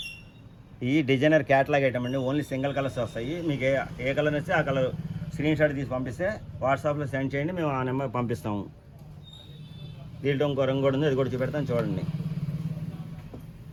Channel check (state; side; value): identical; both; correlation 1.00